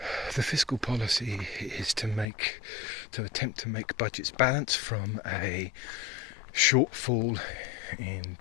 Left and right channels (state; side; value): drops out; right; at 2.2 s